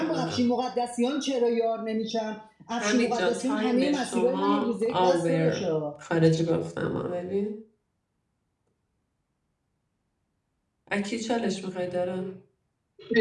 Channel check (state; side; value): identical; both; correlation 1.00